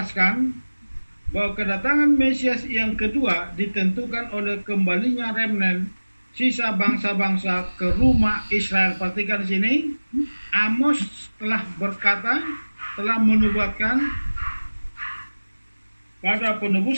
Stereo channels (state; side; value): inverted; both; correlation -1.00